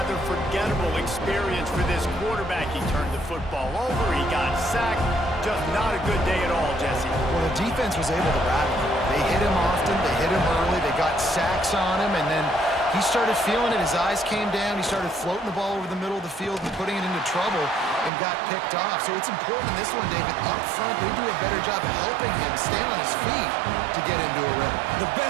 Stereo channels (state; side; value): drops out; left; at 18.1 s